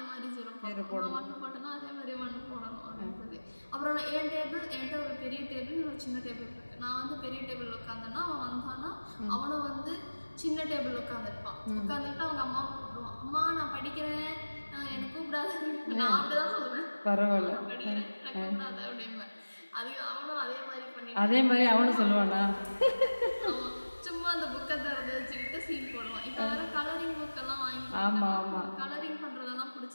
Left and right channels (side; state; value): both; inverted; correlation -1.00